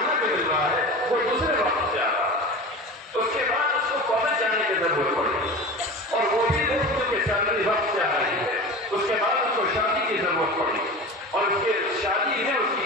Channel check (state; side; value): normal; both; correlation 0.32